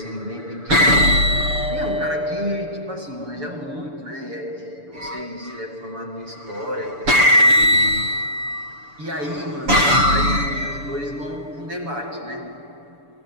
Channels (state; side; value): late; left; 6.9 ms